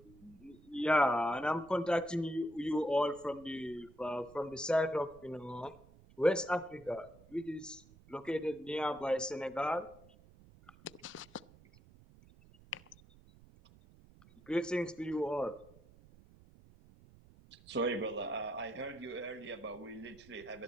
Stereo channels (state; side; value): noise; right; rumble, 24 dB below the sound